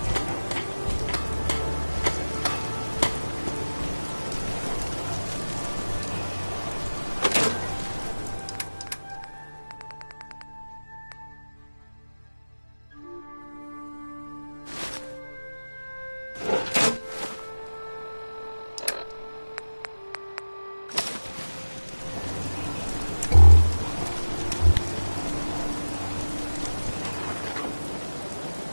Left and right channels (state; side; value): inverted; both; correlation -1.00